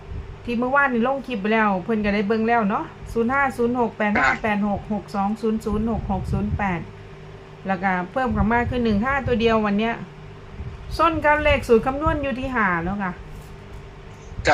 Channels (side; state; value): both; identical; correlation 1.00